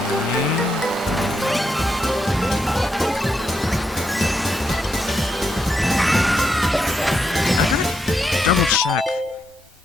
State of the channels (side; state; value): both; normal; correlation 0.81